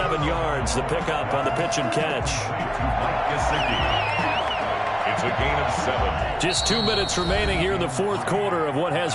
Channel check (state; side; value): identical; both; correlation 1.00